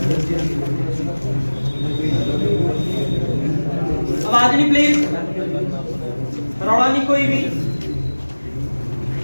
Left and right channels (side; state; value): both; inverted; correlation -1.00